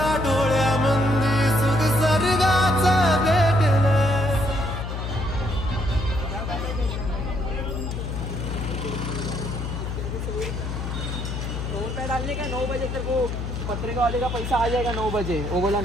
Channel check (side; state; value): left; noise; hum, 4 dB below the sound